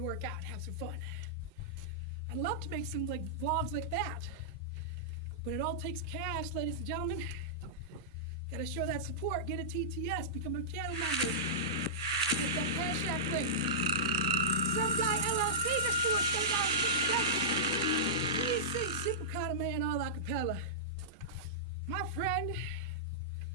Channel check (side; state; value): both; normal; correlation -0.14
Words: work out and have some fun. I'd love to make some like vlogs like that, but it all takes cash, ladies and gentlemen. Gotta show that support, get a TTS, become a channel member, get that Cash App link. Some guy LLC just threw us $7.50. Please sing Simple Kind of Man all a cappella. My friend.